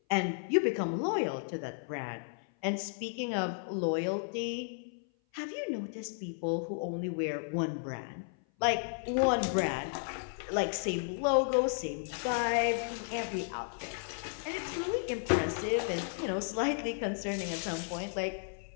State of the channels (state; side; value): silent; right; 55 dB below the other